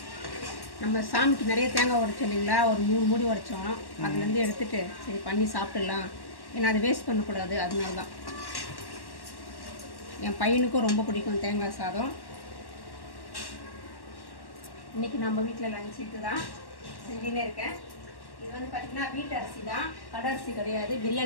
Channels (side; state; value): right; late; 1.1 ms